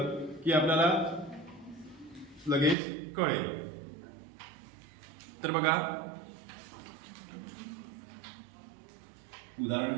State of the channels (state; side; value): drops out; left; at 2.8 s